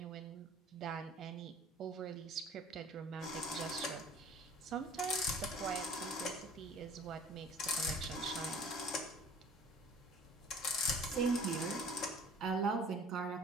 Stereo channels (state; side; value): normal; both; correlation 0.48